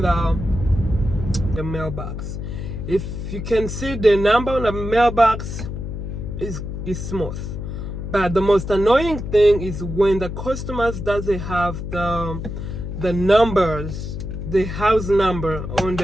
the mailbox. If you can see the number on the mailbox, is smooth. But the most annoying thing is when the customers doesn't have the numbers, the house number on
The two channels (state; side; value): noise; left; hum, 6 dB below the sound